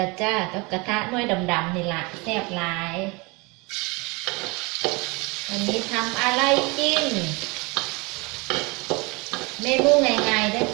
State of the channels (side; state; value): left; quieter; 27.2 dB